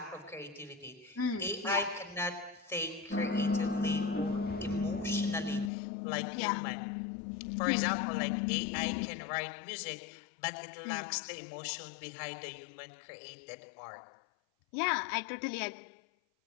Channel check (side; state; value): right; drops out; at 5.7 s